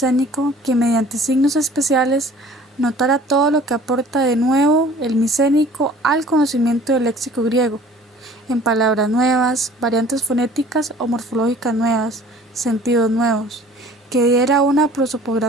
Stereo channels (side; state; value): both; normal; correlation 0.49